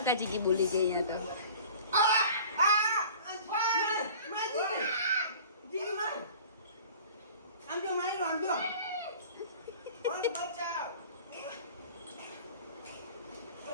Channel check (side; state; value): both; inverted; correlation -0.44